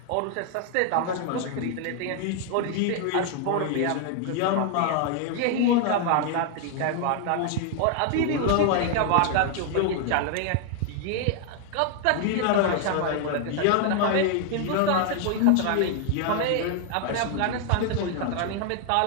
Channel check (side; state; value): both; different; correlation 0.00